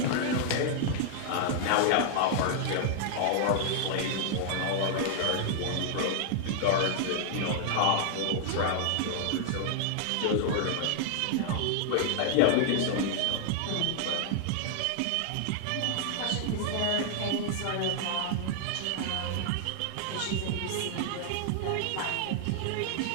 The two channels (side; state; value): both; different; correlation 0.00